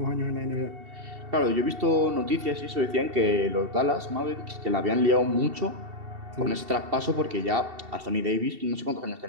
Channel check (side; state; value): left; late; 2.7 ms